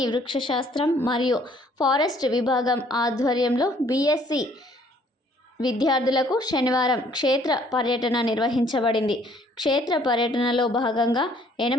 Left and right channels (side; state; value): both; normal; correlation 0.61